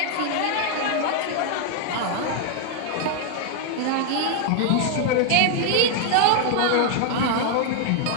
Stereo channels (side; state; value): both; different; correlation 0.00